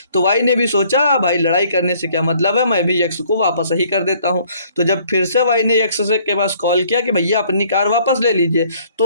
तो वाई ने भी सोचा भाई लड़ाई करने से क्या मतलब है, मैं भी एक्स को वापस ही कर देता हूँ। तो जब फिर से वाई ने एक्स से के पास कॉल किया कि भैया अपनी कार वापस ले लीजिए,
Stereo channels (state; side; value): inverted; both; correlation -0.60